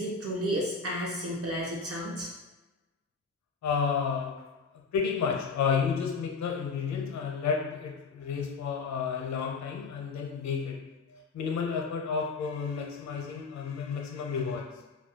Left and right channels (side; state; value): right; quieter; 4.7 dB